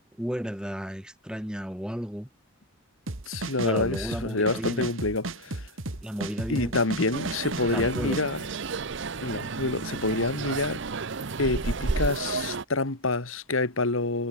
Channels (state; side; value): normal; both; correlation 0.05